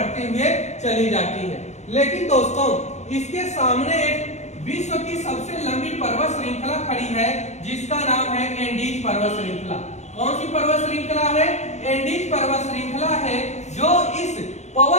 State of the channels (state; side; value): late; right; 0.33 ms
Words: हुए चली जाती है। लेकिन दोस्तों, इसके सामने एक विश्व की सबसे लंबी पर्वत श्रृंखला खड़ी है जिसका नाम है एंडीज पर्वत श्रृंखला। कौन सी पर्वत श्रृंखला है? एंडीज पर्वत श्रृंखला है, जो इस